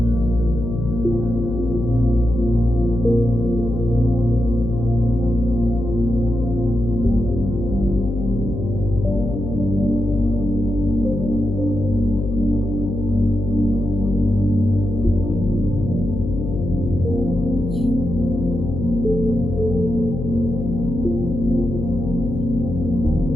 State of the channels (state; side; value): noise; left; hum, 5 dB below the sound